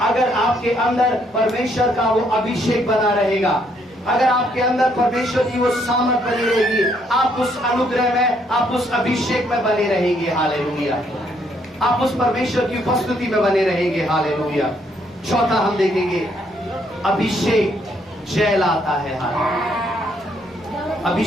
अगर आपके अंदर परमेश्वर का वो अभिषेक बना रहेगा, अगर आपके अंदर परमेश्वर की वो सामर्थ बनी रहेगी, आप उस अनुग्रह में, आप उस अभिषेक में बने रहेंगे। हालेलुया। आप उस परमेश्वर की उपस्थिति में बने रहेंगे। हालेलुया। चौथा हम देखेंगे, अभिषेक जय लाता है। हालेलुया।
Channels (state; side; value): normal; both; correlation 0.70